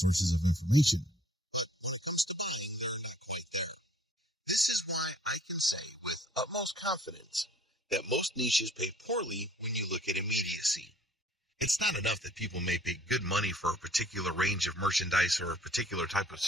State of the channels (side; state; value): both; normal; correlation 0.57